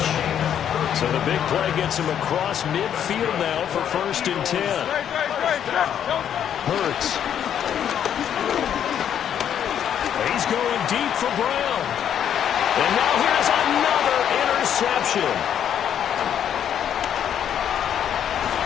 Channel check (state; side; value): quieter; right; 9.4 dB